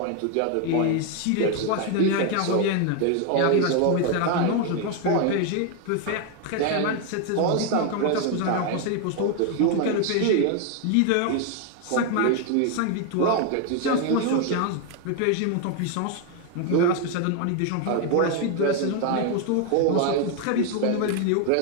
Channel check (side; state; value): both; different; correlation 0.01